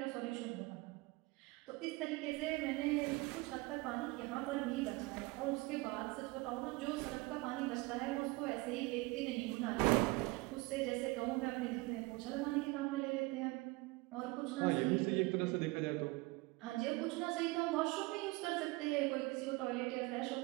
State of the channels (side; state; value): left; quieter; 23.4 dB